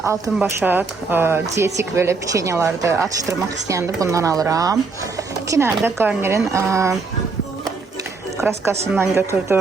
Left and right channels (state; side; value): quieter; left; 4.3 dB